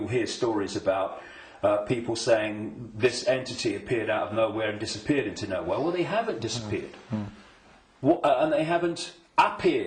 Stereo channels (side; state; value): both; identical; correlation 1.00